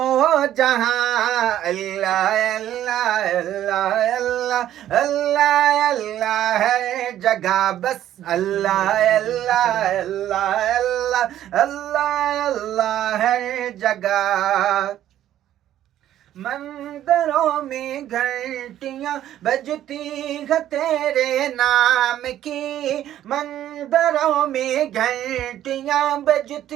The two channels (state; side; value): quieter; left; 12.0 dB